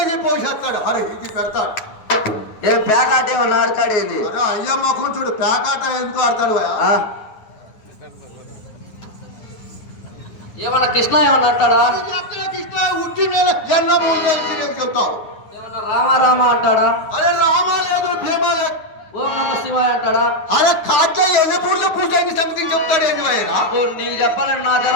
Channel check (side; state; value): right; late; 9.3 ms